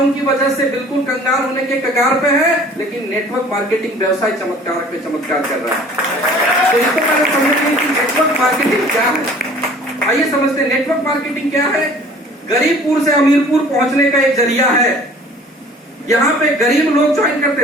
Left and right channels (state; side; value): normal; both; correlation 0.49